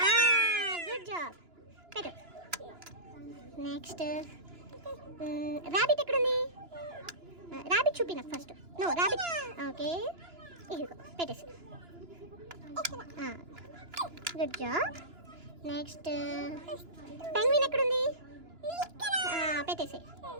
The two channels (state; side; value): late; left; 2.9 ms